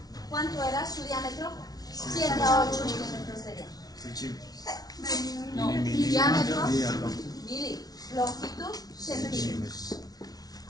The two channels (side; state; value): right; late; 0.19 ms